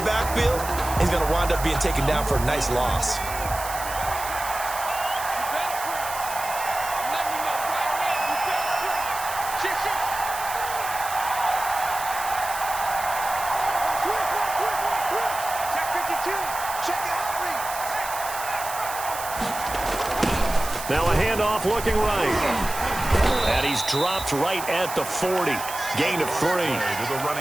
He's going to wind up being taken down for a nice loss. Now a handoff looking right. And he's dropped right at the 40. Gain of 3.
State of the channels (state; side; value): noise; right; hiss, 9 dB below the sound